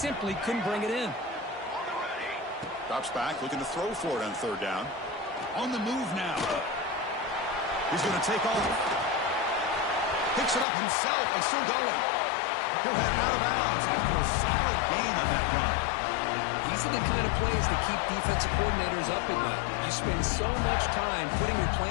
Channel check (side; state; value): right; drops out; at 10.7 s